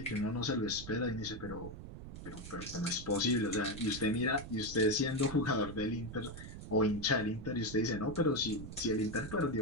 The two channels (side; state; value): right; noise; rumble, 11 dB below the sound